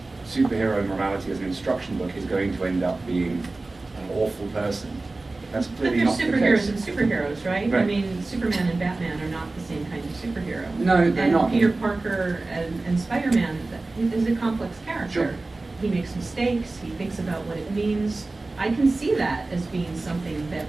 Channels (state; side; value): quieter; left; 3.3 dB